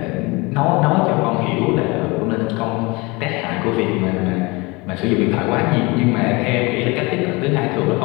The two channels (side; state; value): right; quieter; 25.5 dB